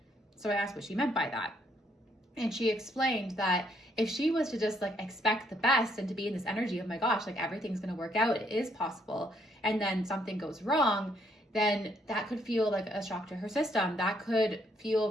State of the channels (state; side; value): normal; both; correlation 0.70